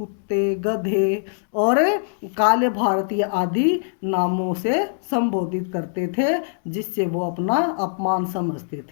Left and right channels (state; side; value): silent; right; digital silence